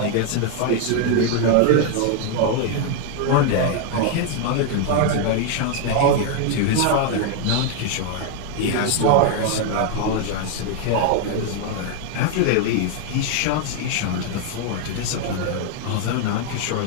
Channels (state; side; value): different; both; correlation 0.01